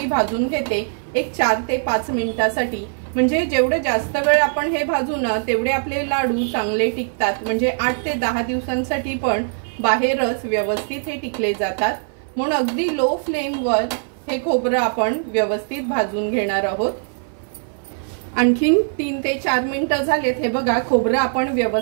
भाजून घेते एक 4 ते 5 मिनिटांसाठी। म्हणजे जेवढे जास्त वेळ आपण हे भाजू ना तेवढे आपले लाडू चांगले टिकतात। म्हणजे 8 ते 10 दिवसांसाठी पण बाहेरच व्यवस्थित हे टिकले जातात। म्हणून अगदी लो फ्लेमवर हे खोबरं आपण व्यवस्थित भाजून घेणार आहोत। आणखीन 3 ते 4 मिनिटं झालेत। हे बघा खोबरं आपण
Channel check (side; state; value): left; silent; 57 dB below the other